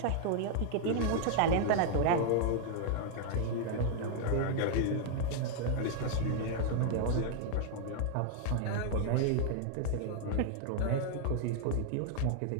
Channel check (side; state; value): both; different; correlation 0.00